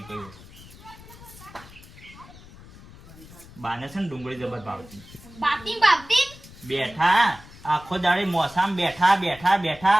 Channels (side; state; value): left; noise; rumble, 20 dB below the sound